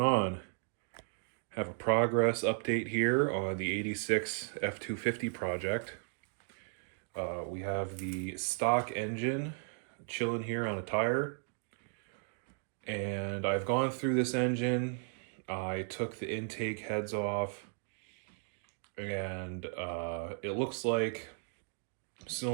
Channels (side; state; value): left; silent; 54 dB below the other